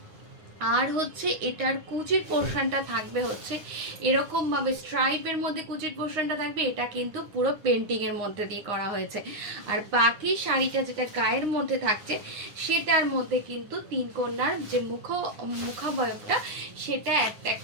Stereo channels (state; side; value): late; left; 9.7 ms